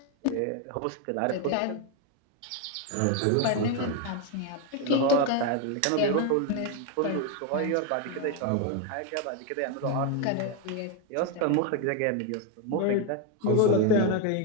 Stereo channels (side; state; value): both; different; correlation 0.02